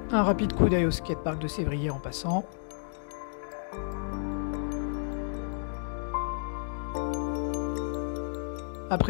Un rapide coup d'œil au skatepark de Sévrier en passant.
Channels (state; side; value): silent; right; digital silence